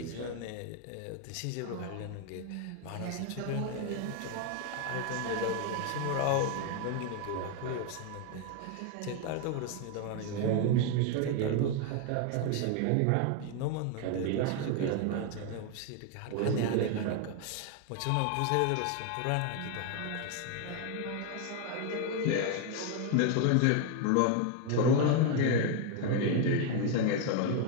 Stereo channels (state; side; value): different; both; correlation 0.01